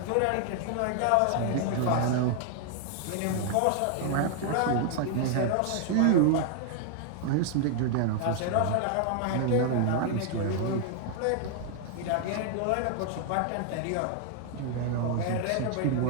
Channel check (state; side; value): different; both; correlation 0.00